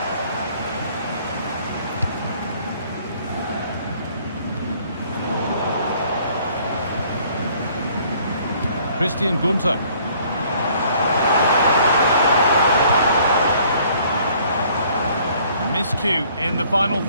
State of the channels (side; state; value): both; inverted; correlation -0.59